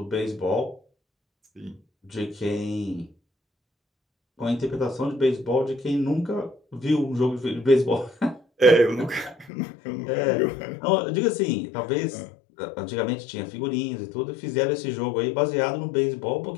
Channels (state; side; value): drops out; right; at 9.5 s